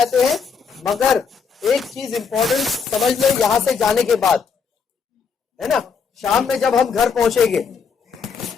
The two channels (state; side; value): quieter; right; 5.9 dB